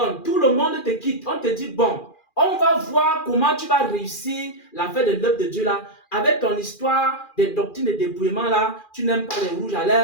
Tout le monde te quitte. On te dit, bon, on va voir comment tu vas réussir l'affaire de l'œuvre de Dieu là. Avec ton histoire des doctrines de dépouillement là, tu n'aimes pas les rouges à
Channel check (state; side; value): late; right; 2.4 ms